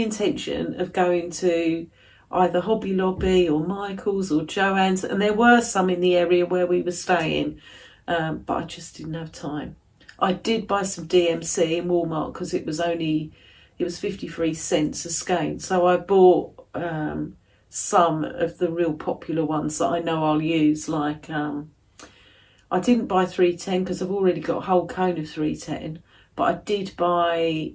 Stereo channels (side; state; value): both; identical; correlation 1.00